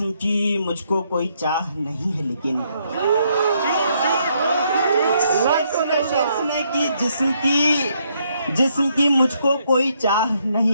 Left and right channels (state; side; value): inverted; both; correlation -0.73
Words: की मुझको कोई चाह नहीं है लेकिन, सुने कि जिस्म की मुझको कोई चाह